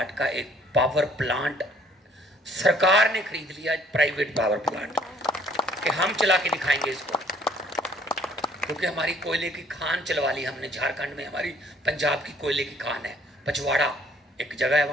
का एक पावर प्लांट सरकार ने खरीद लिया, प्राइवेट पावर प्लांट, कि हम चला के दिखाएंगे इसको। क्योंकि हमारी कोयले की खान चलवा ली हमने झारखंड में। हमारी पंजाब की कोयले की खान है, पचवाड़ा एक जगह है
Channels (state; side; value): normal; both; correlation 0.60